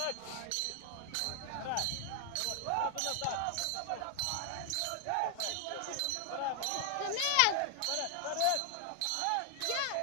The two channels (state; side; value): different; both; correlation 0.00